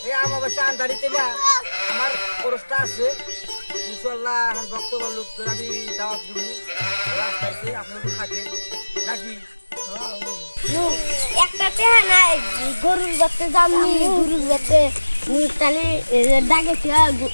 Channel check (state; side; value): inverted; both; correlation -1.00